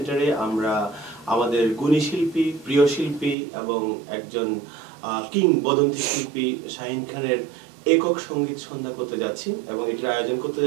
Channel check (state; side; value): drops out; left; at 3.4 s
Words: আমরা আমাদের গুণী শিল্পী, প্রিয় শিল্পী এবং একজন কিংবদন্তি শিল্পী শাহিন খানের একক সঙ্গীত সন্ধ্যা করতে যাচ্ছি এবং এটির আয়োজন করতে